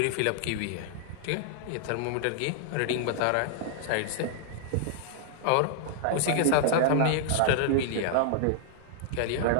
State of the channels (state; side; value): different; both; correlation -0.01